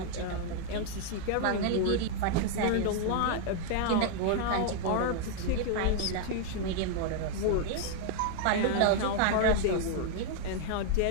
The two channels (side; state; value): both; different; correlation 0.00